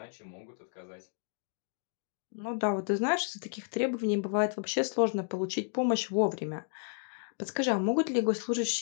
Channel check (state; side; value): silent; right; 56 dB below the other